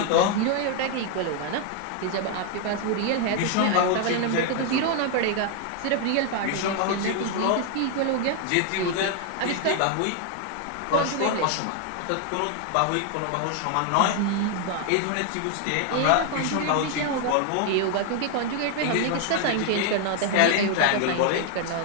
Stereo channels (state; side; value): different; both; correlation 0.00